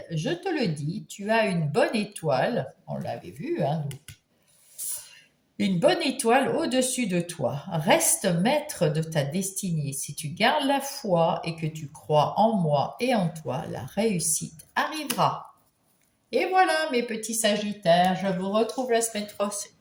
je te le dis, tu as une bonne étoile, on l'avait vu, hein, une bonne étoile au-dessus de toi. Reste maître de ta destinée. Si tu gardes la foi et que tu crois en moi et en toi, la réussite arrivera. Et voilà mes petits Sagittaires, je vous retrouve la semaine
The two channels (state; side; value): identical; both; correlation 1.00